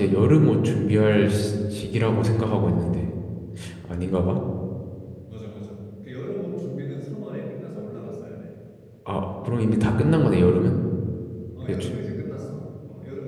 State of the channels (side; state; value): both; identical; correlation 1.00